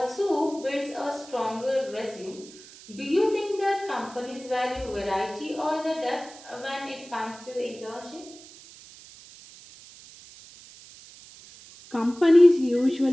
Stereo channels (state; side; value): noise; right; hiss, 20 dB below the sound